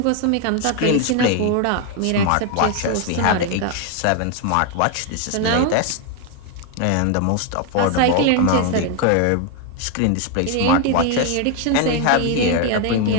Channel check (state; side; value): different; both; correlation 0.01